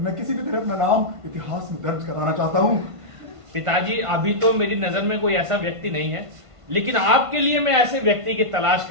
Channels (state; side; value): late; left; 1.5 ms